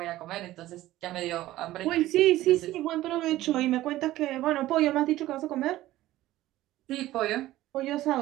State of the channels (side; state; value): left; quieter; 15.7 dB